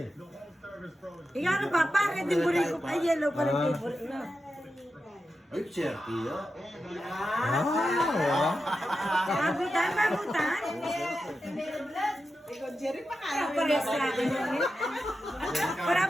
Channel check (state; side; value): normal; both; correlation 0.90